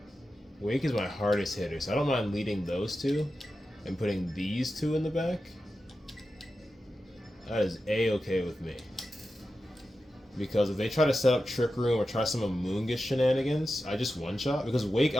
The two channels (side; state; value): both; normal; correlation 0.91